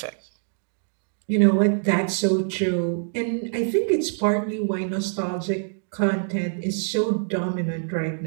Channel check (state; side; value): silent; left; digital silence